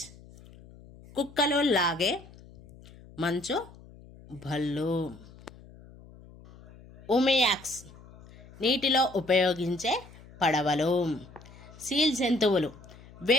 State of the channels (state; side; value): noise; left; hum, 21 dB below the sound